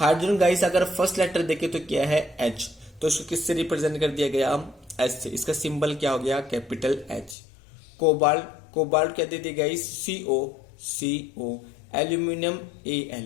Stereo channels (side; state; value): right; drops out; at 7.4 s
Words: guys अगर फर्स्ट लेटर देखे तो क्या है? H। तो इसको किससे रिप्रेजेंट कर दिया गया? H से। इसका सिंबल क्या हो गया? Capital H। कोबाल्ट, कोबाल्ट क्या दे दिया guys? CO, CO। Aluminium